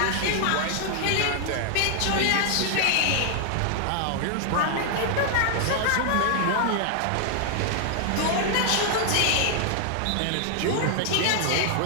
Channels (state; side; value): different; both; correlation 0.00